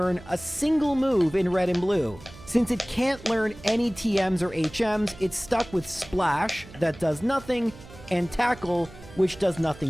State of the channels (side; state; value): right; noise; hum, 19 dB below the sound